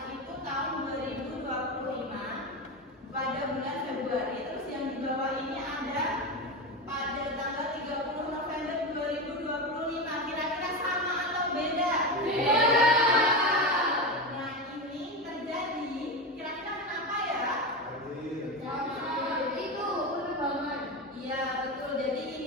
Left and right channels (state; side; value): normal; both; correlation 0.19